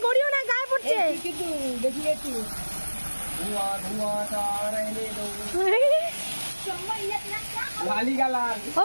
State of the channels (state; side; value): inverted; both; correlation -1.00